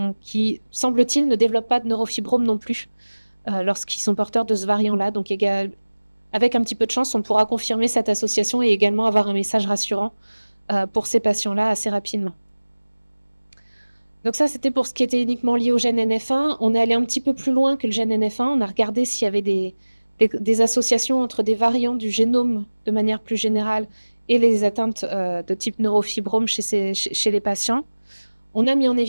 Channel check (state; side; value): inverted; both; correlation -1.00